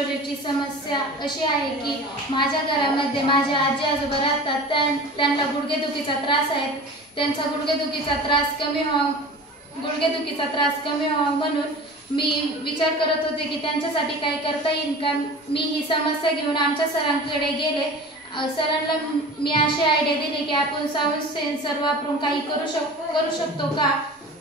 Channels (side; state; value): both; normal; correlation 0.37